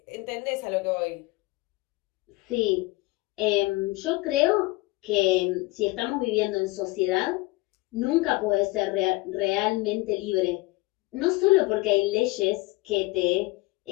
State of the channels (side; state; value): right; quieter; 21.6 dB